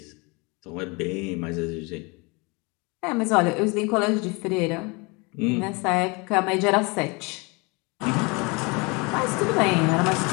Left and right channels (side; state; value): right; quieter; 28.4 dB